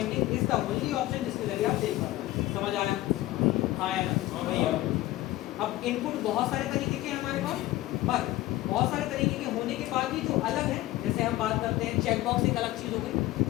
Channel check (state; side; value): quieter; right; 16.7 dB